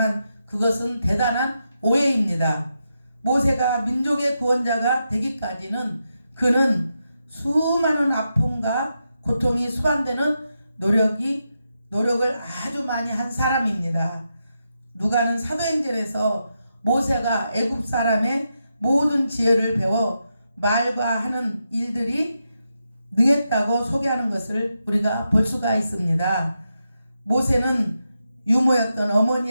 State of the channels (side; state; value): both; inverted; correlation -0.86